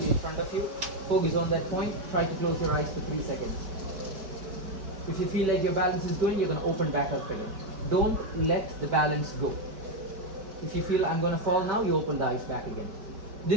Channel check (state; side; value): late; left; 4.8 ms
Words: in front of you. Focus on that point. Try to close your eyes for 3 seconds. If you feel like your balance is going, you're going to open back up again. Don't let the balance go. If you feel I'm going to fall now, you open the eyes back again.